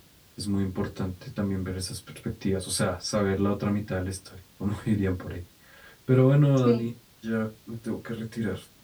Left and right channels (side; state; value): both; identical; correlation 1.00